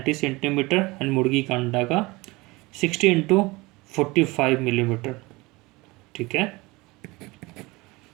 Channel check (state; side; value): quieter; left; 22.8 dB